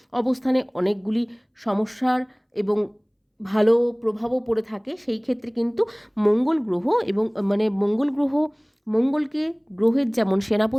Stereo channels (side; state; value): both; identical; correlation 1.00